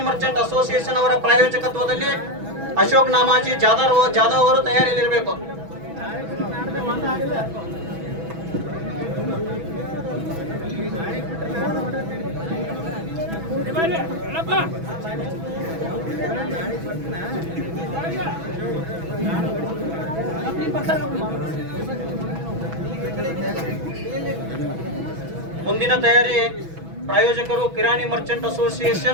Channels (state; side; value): late; left; 6.1 ms